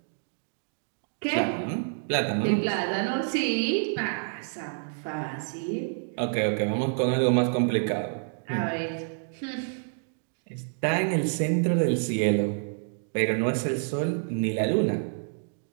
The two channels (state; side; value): silent; left; digital silence